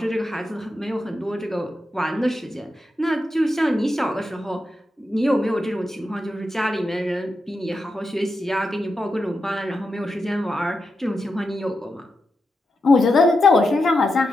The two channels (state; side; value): normal; both; correlation 0.87